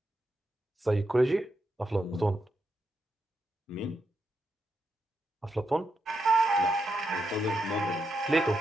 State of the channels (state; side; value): normal; both; correlation 0.84